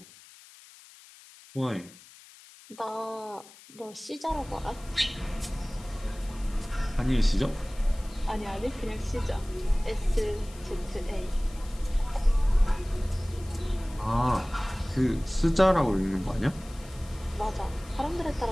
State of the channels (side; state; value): left; noise; hiss, 21 dB below the sound